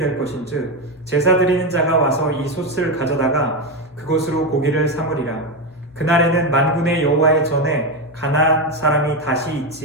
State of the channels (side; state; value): both; normal; correlation 0.11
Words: 것인즉 제사 드리는 자가 와서 이 솥을 가져다가 그것으로 고기를 삼으리라. 그날에는 만군의 여호와의 전에 가나안 사람이 다시